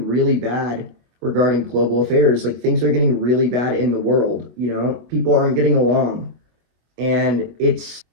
really bad regarding global affairs. Like things are getting really bad in the world, you know, people aren't getting along, and it's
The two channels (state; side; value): late; left; 24 ms